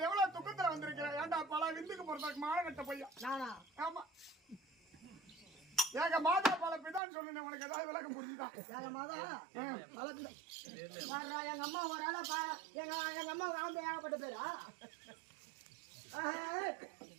எவ்வளவு துக்கத்துல வந்திருக்கிறேன். ஏன்டா பல விந்துக்கு போறதுக்கு மானகட்ட பையன் நானா? ஆமா. ஏக மாதா பல பிதான்னு சொன்னேன். உனக்கு ஏதாவது விளக்கம் புரிஞ்சுதா? ஏக மாதா பல பிதா. எங்க அம்மா ஒரு ஆளா எங்க அம்மா ஆம்பளை ஏகப்பட்ட பேரா?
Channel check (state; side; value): drops out; left; at 7.0 s